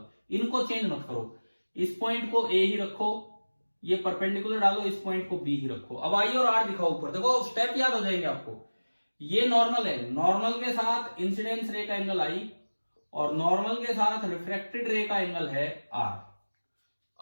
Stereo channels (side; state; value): both; inverted; correlation -1.00